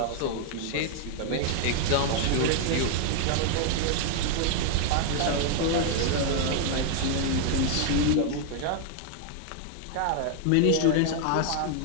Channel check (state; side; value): different; both; correlation 0.00